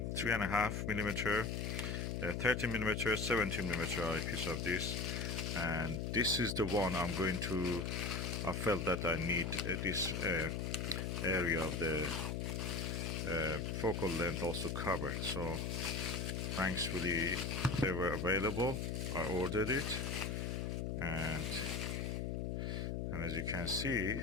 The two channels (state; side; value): noise; left; hum, 2 dB below the sound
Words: 30mm, 17mm eyepiece of this, and this is the one I felt that I need this area of the focal length also covered. So thankfully they were available. I ordered it, and as you can